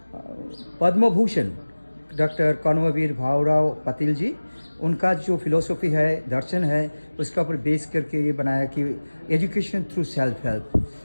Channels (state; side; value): inverted; both; correlation -1.00